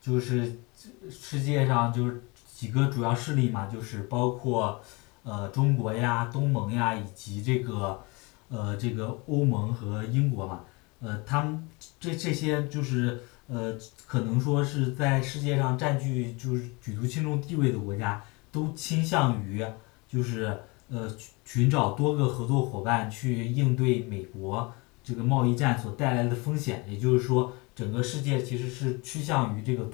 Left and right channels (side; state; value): right; quieter; 27.3 dB